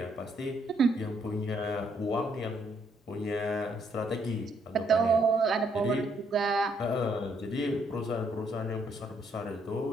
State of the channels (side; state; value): both; normal; correlation 0.71